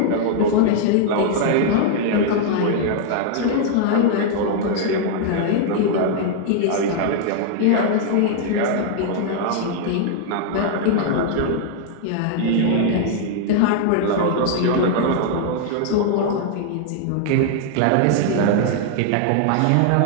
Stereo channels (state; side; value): different; both; correlation 0.00